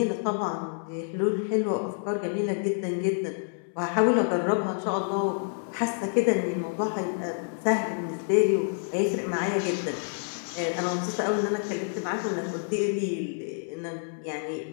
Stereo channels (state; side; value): silent; right; 59 dB below the other